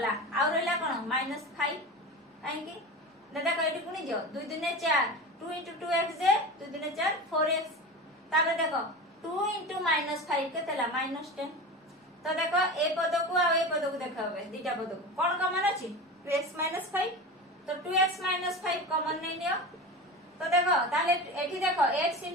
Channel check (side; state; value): both; normal; correlation 0.28